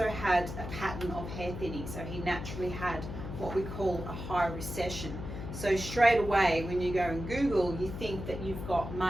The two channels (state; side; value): noise; left; hum, 8 dB below the sound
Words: had a pattern of hair thinning. So he naturally had what we call a high recession. So straight away, when you go and Google, you think that you've got